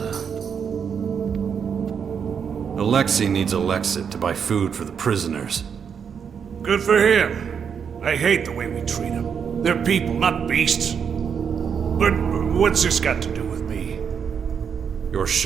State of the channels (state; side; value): quieter; left; 7.1 dB